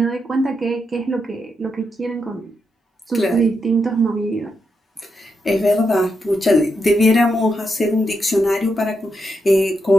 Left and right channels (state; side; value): normal; both; correlation 0.83